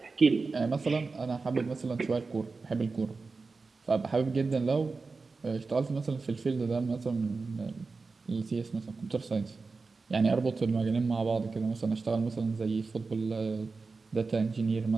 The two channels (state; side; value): quieter; left; 4.2 dB